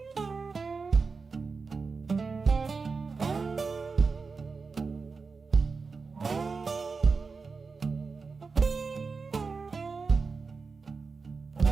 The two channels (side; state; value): left; quieter; 4.6 dB